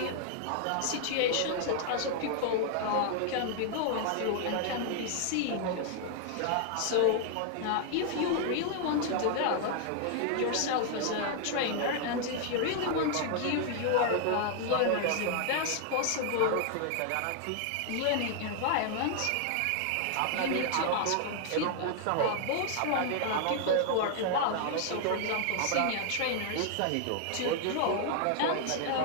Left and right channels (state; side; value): different; both; correlation 0.00